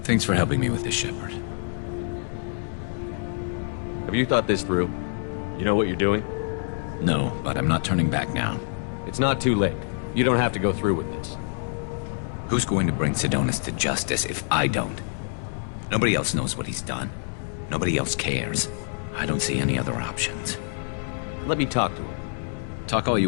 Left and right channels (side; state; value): right; silent; 61 dB below the other